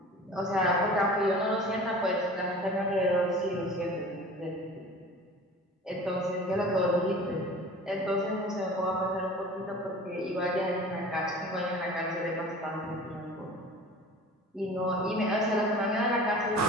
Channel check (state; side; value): normal; both; correlation 0.41